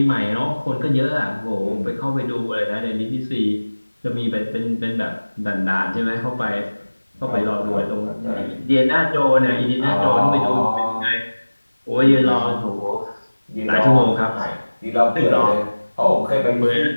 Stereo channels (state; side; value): inverted; both; correlation -1.00